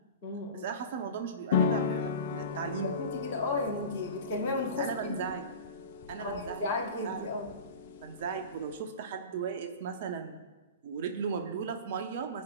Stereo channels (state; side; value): inverted; both; correlation -0.32